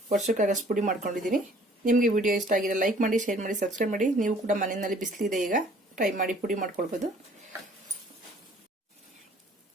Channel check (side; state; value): both; normal; correlation 0.56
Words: ವರ್ಷಕ್ಕಾಗಷ್ಟು ಪುಡಿ ಮಾಡ್ಕೊಂಡಿದ್ದೀನಿ. ನಿಮಗೆ ವಿಡಿಯೋ ಇಷ್ಟ ಆಗಿದೆ ಲೈಕ್ ಮಾಡಿ, ಶೇರ್ ಮಾಡಿ, ಸಬ್ಸ್ಕ್ರೈಬ್ ಮಾಡಿ. ನೀವು ಕೂಡ ಮನೆಯಲ್ಲಿ ಬಿಸಿಲಿದೆ, ಈಗ ಟ್ರೈ ಮಾಡಿ ಪುಡಿ ಮಾಡ್ಕೊಳ್ಬೋದು.